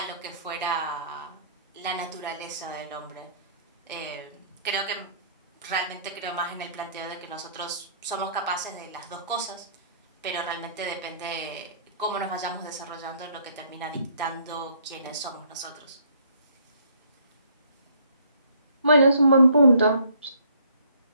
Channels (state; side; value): inverted; both; correlation -0.61